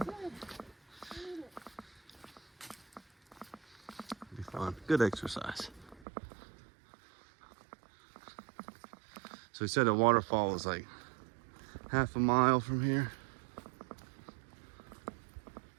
be fun. Good exercise. So he said a waterfall was like half a mile from here.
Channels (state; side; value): drops out; left; at 6.1 s